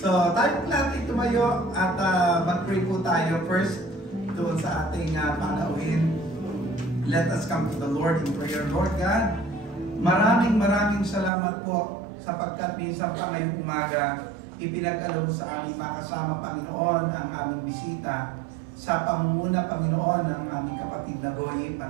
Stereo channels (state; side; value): drops out; left; at 11.3 s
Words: So, tayo po natin tumayo at mag-pray po tayo first doon sa ating panauhin. Let us come to the Lord in prayer. Lord God, maraming salamat po sapagkat minsan pa ngayong umaga, ipinag-alok mo sa aming makasama, Panginoon, ang aming bisita sa pangunguna, Panginoon, ng aming kapatid na Goy,